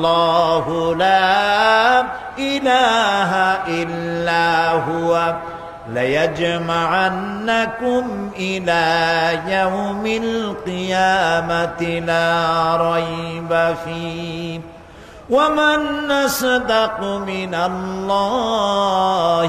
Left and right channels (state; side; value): identical; both; correlation 1.00